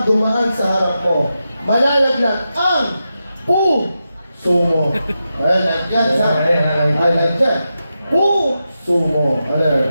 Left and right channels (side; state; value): both; inverted; correlation -0.89